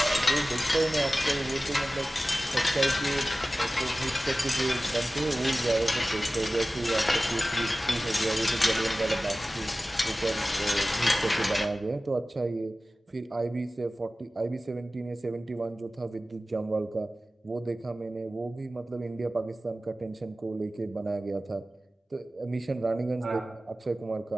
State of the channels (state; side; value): normal; both; correlation 0.96